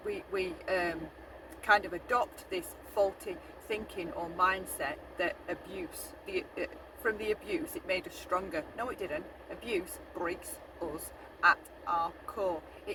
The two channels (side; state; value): both; identical; correlation 1.00